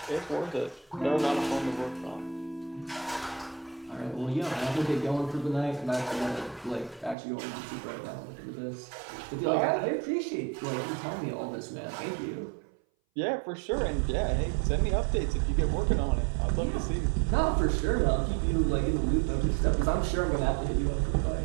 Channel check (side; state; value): left; drops out; at 7.2 s